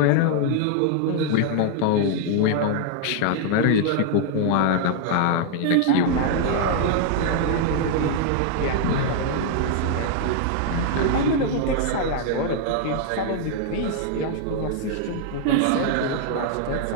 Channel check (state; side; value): different; both; correlation 0.00